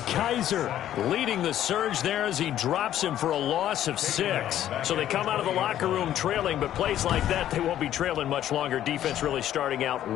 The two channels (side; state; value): right; quieter; 11.8 dB